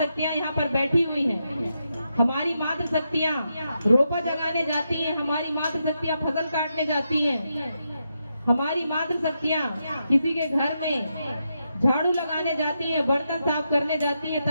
यहाँ पर बैठी हुई हैं। हमारी मातृशक्तियां रोपा जगाने जाती हैं, हमारी मातृशक्तियां फसल काटने जाती हैं, हमारी मातृशक्तियां किसी के घर में झाड़ू लगाने जाती हैं, बर्तन साफ करने जाती हैं,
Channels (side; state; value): both; inverted; correlation -0.84